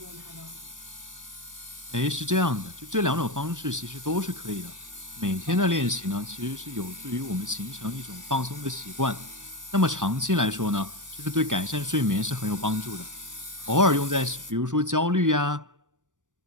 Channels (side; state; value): left; late; 0.87 ms